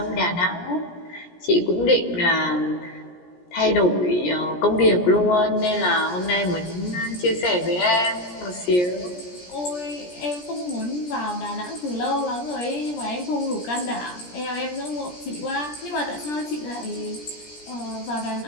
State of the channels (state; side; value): late; right; 17 ms